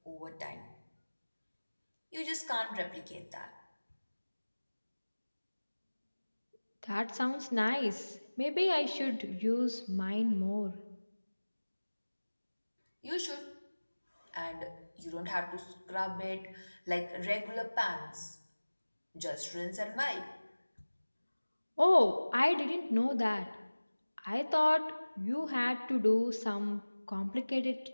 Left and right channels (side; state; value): both; inverted; correlation -1.00